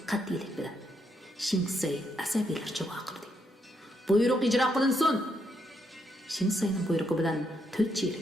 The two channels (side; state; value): both; normal; correlation 0.78